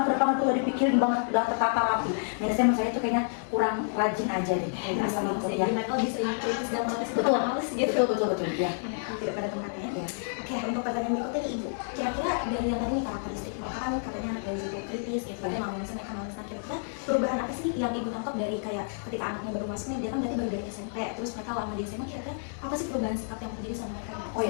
tuh udah dipikirin banget, udah tertata rapi. Minusnya menurut saya itu kayaknya kurang rajin aja deh. Asal itu ya. Jadi mereka lebih sering kritis dan protes Betul, males gitu. betul ya. Tidak pada tempatnya. Ya. Oke, untuk pertanyaan berikutnya nih Ibu. Kira-kira dari yang tadi nih karakteristik mereka kan katanya anak Gen Z itu kritis gitu, tapi males mereka males. Nah, kira-kira perubahan apa sih yang Ibu tangkap dari kayak ketika anaknya baru masuk nih, dia kan berarti baru dari SMP, terus mereka lama di SMA, kira-kira apa sih perubahan sikap yang terjadi sama mereka? Oh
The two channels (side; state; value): right; silent; digital silence